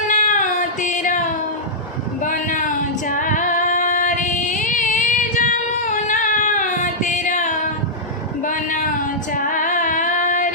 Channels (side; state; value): both; normal; correlation -0.11